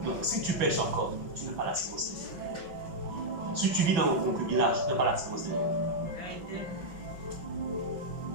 Donc, si tu pêches encore, tu n'as pas la sémence de Dieu. Si tu vis dans le concubinage, tu n'as pas la sémence de Dieu.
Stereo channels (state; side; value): late; left; 6.1 ms